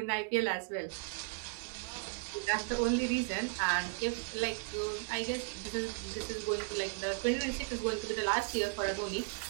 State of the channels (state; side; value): quieter; left; 33.0 dB